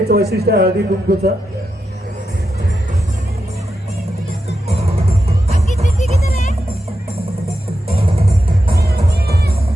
वैशिष्ट्य हळदी कुंकूचं.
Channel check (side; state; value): both; normal; correlation 0.88